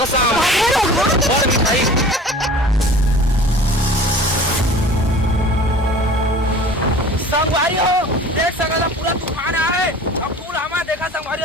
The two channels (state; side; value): normal; both; correlation 0.43